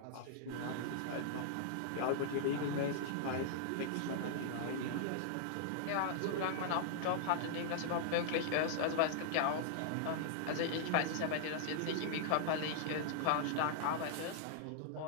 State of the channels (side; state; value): both; different; correlation -0.01